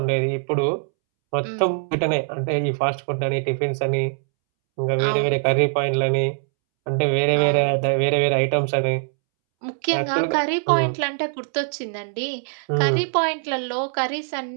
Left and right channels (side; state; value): left; silent; 64 dB below the other